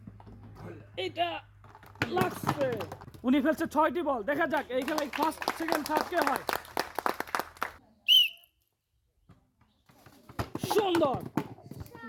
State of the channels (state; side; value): identical; both; correlation 1.00